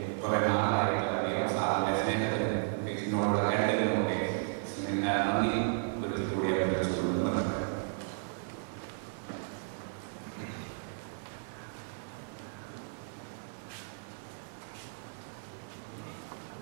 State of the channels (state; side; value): silent; left; 55 dB below the other